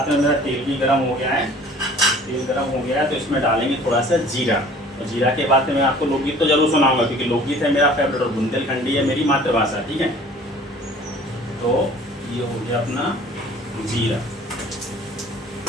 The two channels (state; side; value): normal; both; correlation 0.49